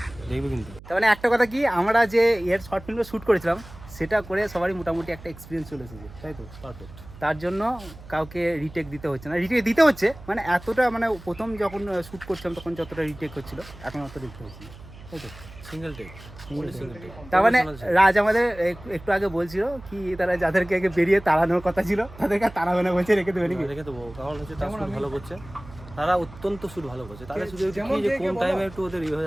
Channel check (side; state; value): right; noise; hum, 18 dB below the sound